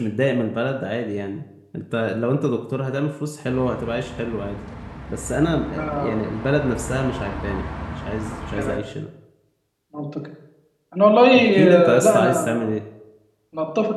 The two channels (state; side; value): identical; both; correlation 1.00